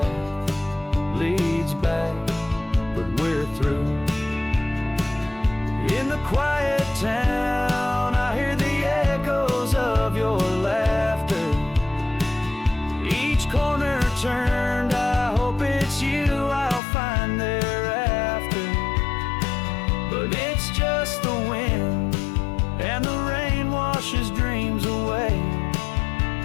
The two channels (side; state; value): right; drops out; at 16.8 s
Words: leads back, but we're through. In the quiet town, I hear the echoes of your laughter. Each corner turned, I hope it's you I'll find thereafter. But it's just the wind, and the rain washes dreams away,